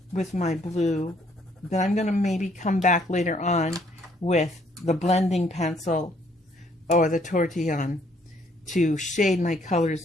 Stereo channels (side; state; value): both; normal; correlation 0.66